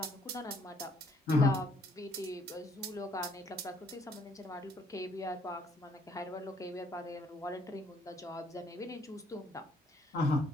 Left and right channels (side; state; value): both; normal; correlation 0.66